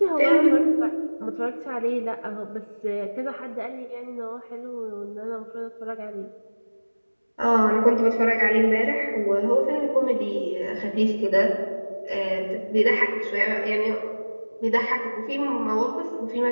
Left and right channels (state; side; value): inverted; both; correlation -1.00